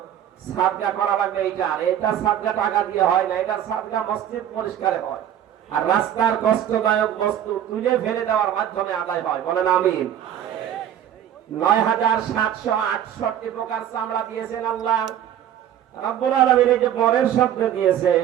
সাদকা করা লাগবে। এটা সাদকা টাকা দিয়ে হয় না, এটা সাদকা মসজিদ পরিষ্কারে হয়। আর রাস্তার কষ্টদায়ক বস্তু তুলে ফেলে দেওয়ার মাধ্যমে আদায় হয়। বলেন আমিন। ৯৭৬৮ প্রকার চামড়া দিয়েছেন আল্লাহ রব্বুল আলামিন। এই যে পরের শব্দ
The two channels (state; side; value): quieter; left; 10.6 dB